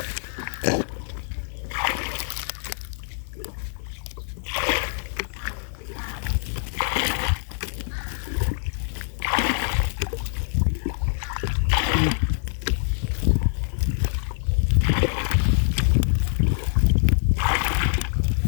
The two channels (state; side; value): silent; right; digital silence